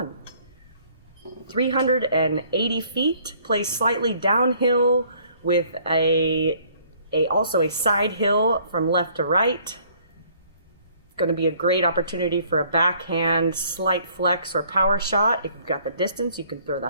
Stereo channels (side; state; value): both; inverted; correlation -0.60